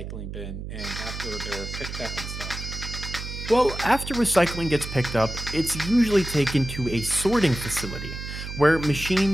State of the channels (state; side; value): noise; right; hum, 8 dB below the sound